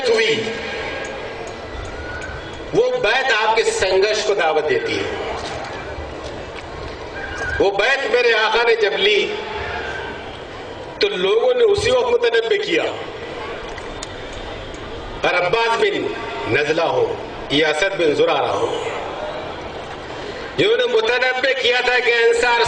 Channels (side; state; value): both; identical; correlation 1.00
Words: हुई, वो बैत आपके संघर्ष को दावत देती है। वो बैत मेरे आका ने जब ली तो लोगों ने उसी वक्त मुतनब्बे किया, और अब्बास बिन नजला हो या असद बिन जुरारा हो, जिन्होंने मुतनब्बे किया था कि अंसार